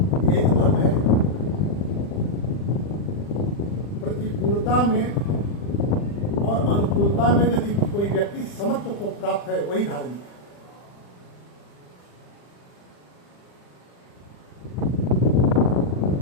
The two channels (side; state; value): right; late; 40 ms